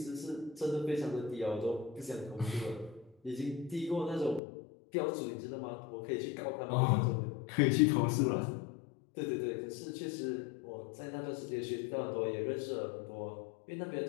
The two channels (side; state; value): right; drops out; at 4.4 s